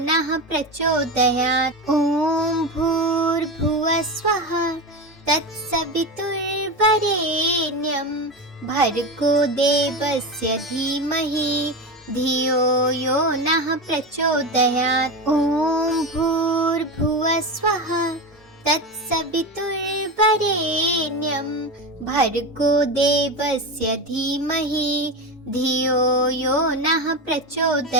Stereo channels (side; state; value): both; normal; correlation 0.20